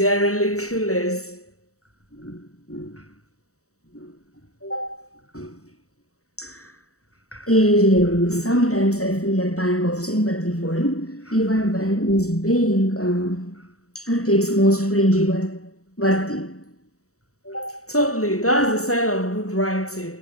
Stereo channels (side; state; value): right; late; 0.65 ms